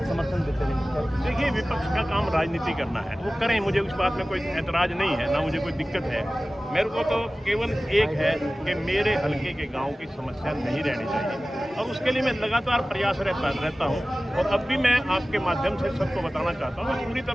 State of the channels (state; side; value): normal; both; correlation 0.97